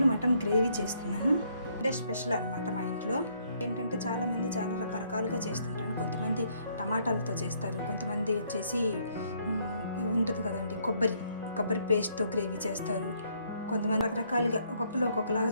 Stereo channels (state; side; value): inverted; both; correlation -0.69